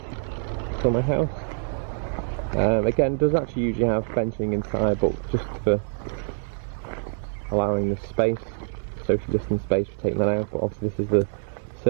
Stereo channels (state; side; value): silent; left; digital silence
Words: for my house. Again, it does actually usually have benching inside, but just for allowing the space, social distance space, for taking that out. But obviously this is the